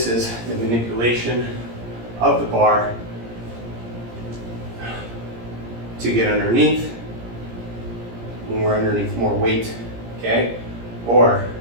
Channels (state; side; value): late; left; 17 ms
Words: is the manipulation of the bar to get underneath when we're underneath more weight, okay? Or